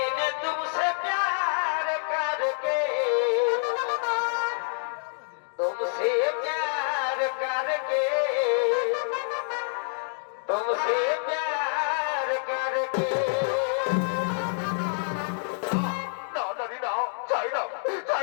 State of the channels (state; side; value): silent; right; digital silence